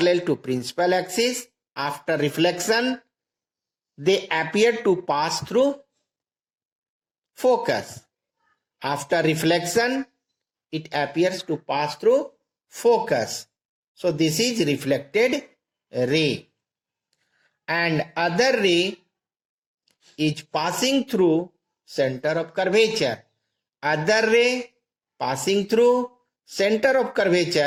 to principal axis. After reflection, they appear to pass through focus. After reflection, it appears to pass through focus. So this is reflected ray. And other ray is passing through center of curvature. Other ray passing through center of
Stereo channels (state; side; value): identical; both; correlation 1.00